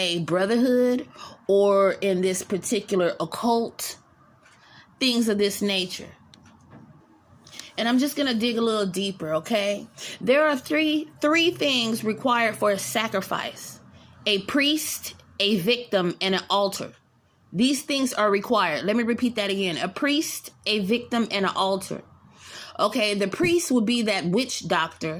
brotherhood, or in this particular occult, things of this nature. And I'm just going to dig a little deeper, okay? There are three things required for a sacrifice: a priest, a victim, and an altar. These things are required. Let me repeat that again. A priest, a victim, and an altar. Okay, the priest would be that witch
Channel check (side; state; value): both; identical; correlation 1.00